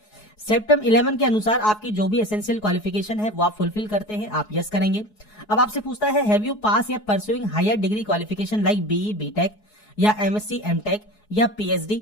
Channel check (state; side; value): late; right; 4.7 ms